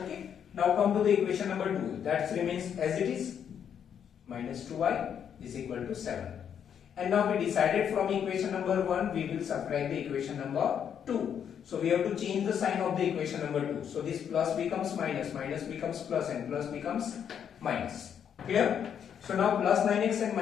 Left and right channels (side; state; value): right; quieter; 8.4 dB